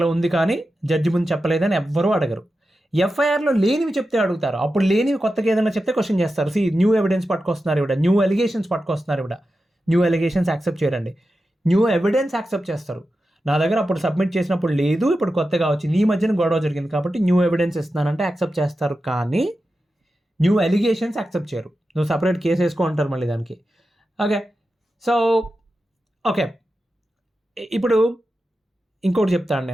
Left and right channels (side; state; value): both; normal; correlation 0.91